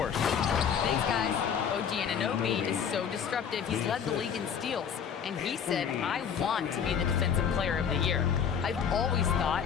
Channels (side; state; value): right; quieter; 7.5 dB